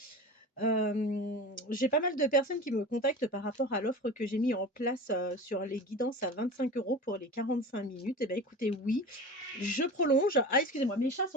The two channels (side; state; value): both; normal; correlation 0.33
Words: J'ai pas mal de personnes qui me contactent par rapport à l'offre que j'ai mis en place, sur les guidances à 25 € pour les 45 minutes. Et bah, écoutez, oui, je prolonge. Ah, excusez-moi, mes chats